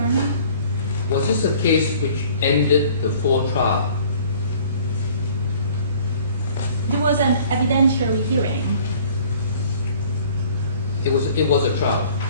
Honor? Was this a case which ended before trial? There was an evidentiary hearing. It was a trial.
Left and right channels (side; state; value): both; inverted; correlation -0.52